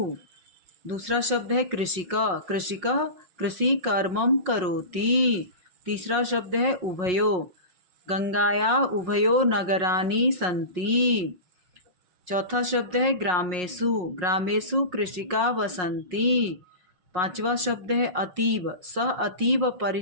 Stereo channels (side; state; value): left; late; 5.5 ms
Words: दूसरा शब्द है कृषिका, कृषिका कृषि कर्मम करोति। तीसरा शब्द है उभयो, गंगाया उभयो नगरानि सन्ति। चौथा शब्द है ग्रामेषु, ग्रामेषु कृषिका वसन्ति। पांचवा शब्द है अतीव, सह अतीव